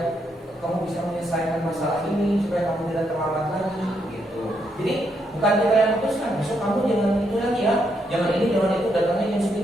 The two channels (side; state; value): both; normal; correlation 0.77